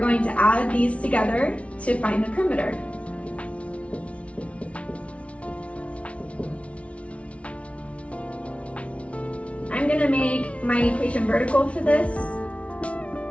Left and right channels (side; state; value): right; late; 0.063 ms